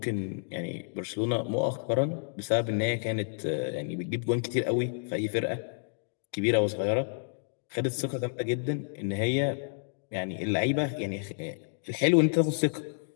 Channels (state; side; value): silent; right; digital silence